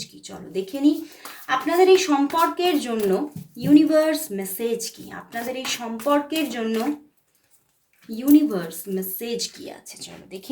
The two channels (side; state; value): both; identical; correlation 1.00